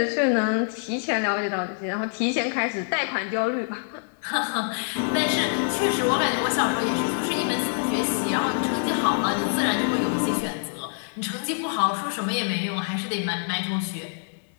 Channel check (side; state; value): right; silent; digital silence